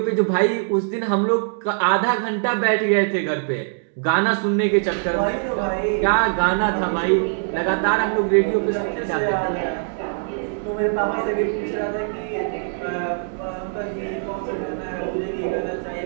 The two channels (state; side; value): silent; left; digital silence